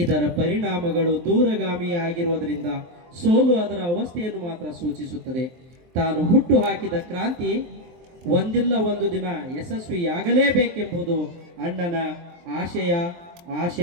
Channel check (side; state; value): left; late; 23 ms